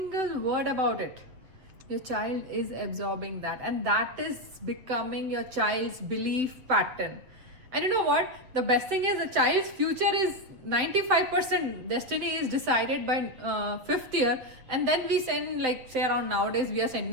word about it, your child is absorbing that, and that is becoming your child's belief pattern. And you know what? The best thing is, the child's future is 95% destiny is decided by 5th year, and then we send, say around nowadays we are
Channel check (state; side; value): late; left; 7.8 ms